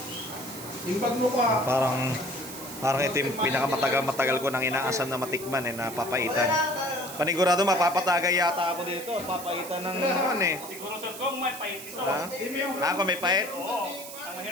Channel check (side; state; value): right; noise; hiss, 12 dB below the sound